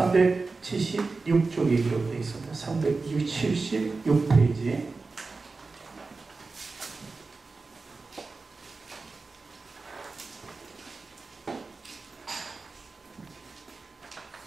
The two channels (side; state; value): left; quieter; 3.9 dB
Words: 기록되어 있습니다. 376페이지.